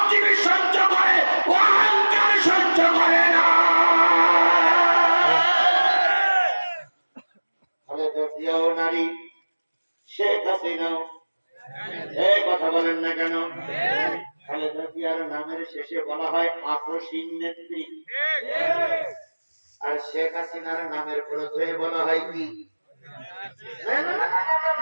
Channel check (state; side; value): inverted; both; correlation -1.00